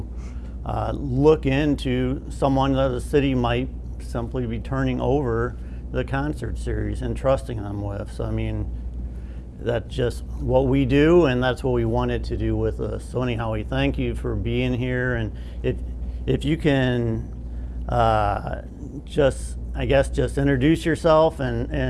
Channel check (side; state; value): both; identical; correlation 1.00